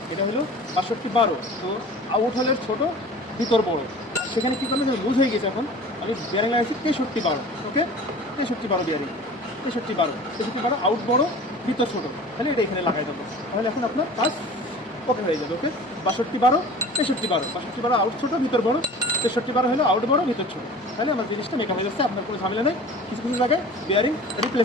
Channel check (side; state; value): both; normal; correlation 0.41